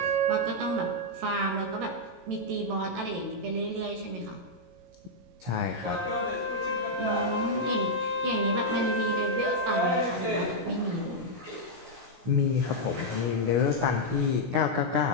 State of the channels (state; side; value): late; left; 17 ms